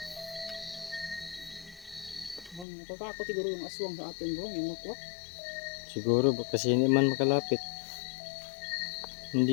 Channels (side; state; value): right; drops out; at 2.7 s